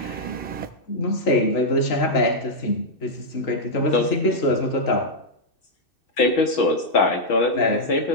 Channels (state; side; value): late; right; 2.6 ms